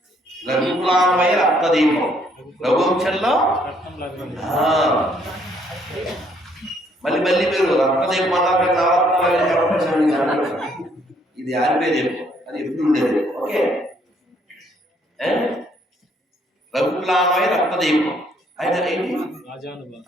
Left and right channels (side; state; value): both; normal; correlation 0.67